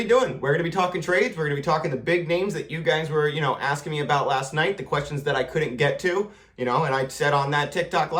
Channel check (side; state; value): both; identical; correlation 1.00